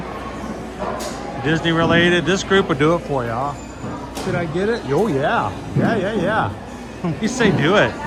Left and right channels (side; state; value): both; identical; correlation 1.00